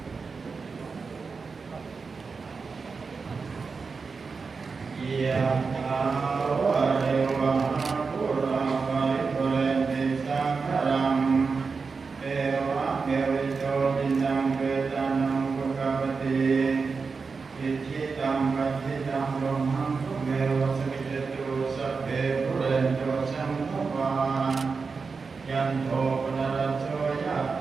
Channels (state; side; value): quieter; left; 4.8 dB